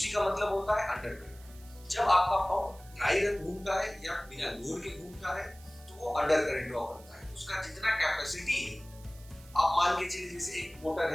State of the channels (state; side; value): noise; right; hiss, 23 dB below the sound